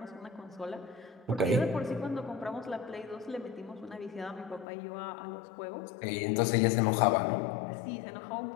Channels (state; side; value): drops out; right; at 4.7 s